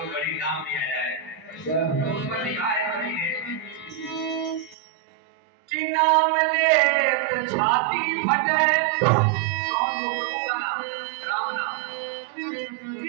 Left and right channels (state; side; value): drops out; left; at 4.8 s